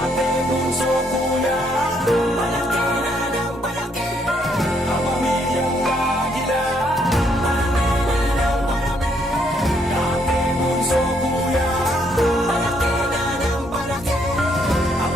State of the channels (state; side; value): normal; both; correlation 0.71